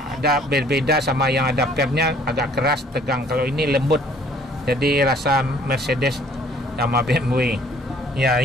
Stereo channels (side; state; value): both; normal; correlation 0.58